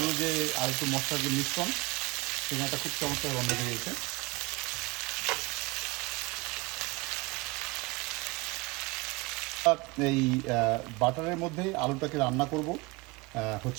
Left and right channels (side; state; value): left; quieter; 24.5 dB